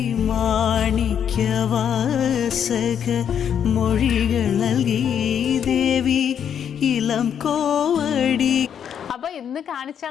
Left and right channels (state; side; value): quieter; right; 8.5 dB